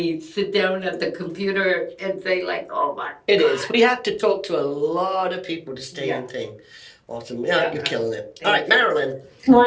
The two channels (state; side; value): identical; both; correlation 1.00